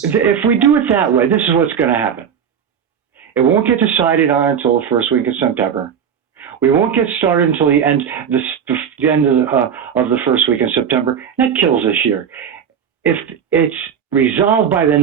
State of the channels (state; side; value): quieter; left; 7.8 dB